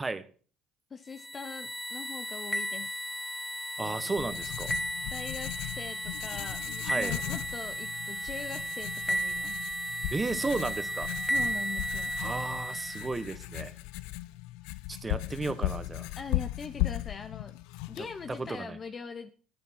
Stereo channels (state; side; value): normal; both; correlation 0.71